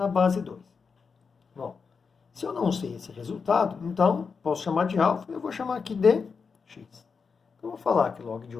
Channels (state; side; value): quieter; right; 5.4 dB